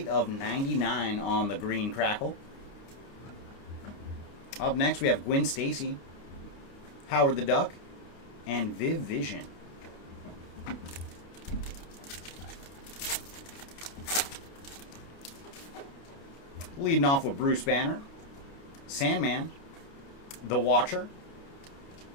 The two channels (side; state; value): right; late; 29 ms